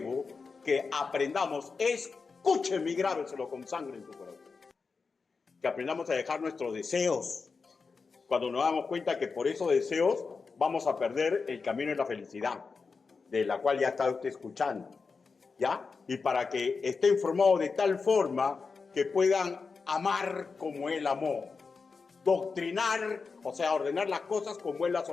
que aprendamos, escúcheme y grábeselo con sangre en tu corazón, que aprendamos a dejar nuestros deseos, cuando nos damos cuenta que por esos deseos vamos a perder el camino de la felicidad, de la cual ya está usted escuchando, ¿ya? Y para que esté informado de tal forma que puedan amar como él amó, doctrinar, o sea, ordenar las cosas como él las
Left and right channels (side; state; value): right; quieter; 4.8 dB